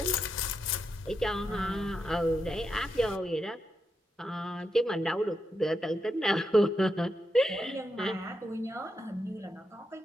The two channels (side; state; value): both; normal; correlation 0.84